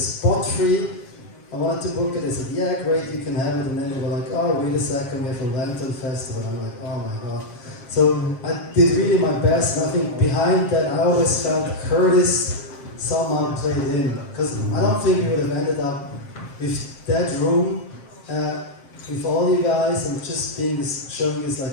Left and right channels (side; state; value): right; late; 7.5 ms